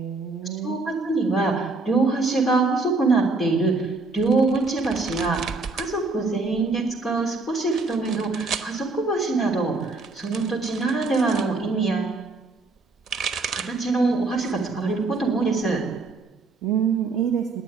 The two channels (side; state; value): left; quieter; 3.6 dB